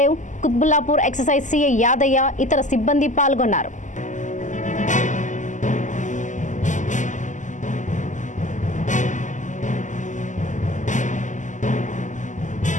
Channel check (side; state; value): right; late; 0.36 ms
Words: Qutbullapur excise CI Yadaiah, ఇతర సిబ్బంది పాల్గొన్నారు.